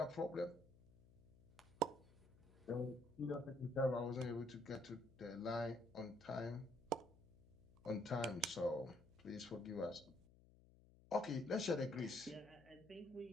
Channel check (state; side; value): noise; left; hum, 24 dB below the sound